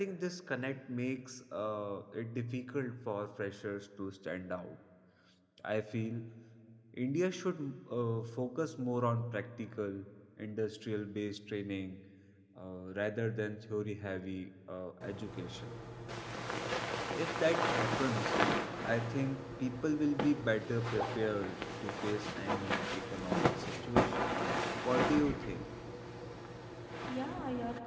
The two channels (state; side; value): identical; both; correlation 1.00